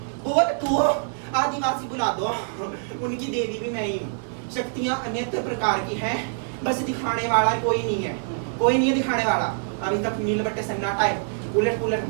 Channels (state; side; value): silent; left; 59 dB below the other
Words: बोल तू। आदिवासी बुला दो, उनकी देवी भी मैं ही हूँ। शक्तियाँ अन्यत्र प्रकार की है, बस दिखाने वाला कोई नहीं है, कोई नहीं है दिखाने वाला। अभी तक नीलबट्टे सन्नाटा है, उलट पुलट